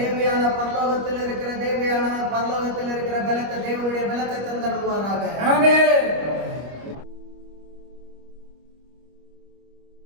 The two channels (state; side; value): late; left; 25 ms